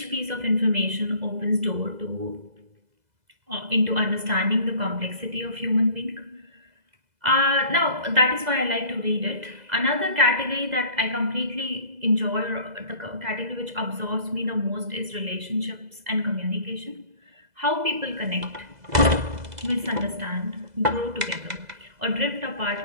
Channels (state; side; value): late; left; 2.0 ms